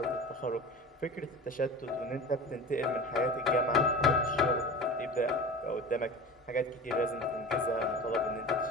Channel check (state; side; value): normal; both; correlation 0.34